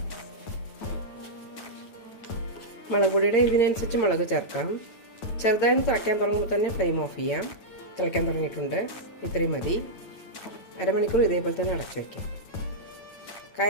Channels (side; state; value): right; late; 8.9 ms